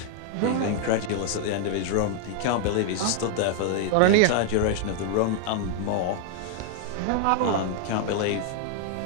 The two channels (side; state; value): both; different; correlation 0.00